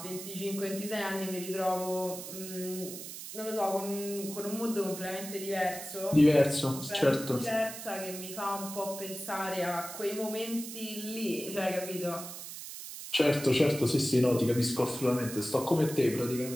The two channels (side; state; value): right; noise; hiss, 10 dB below the sound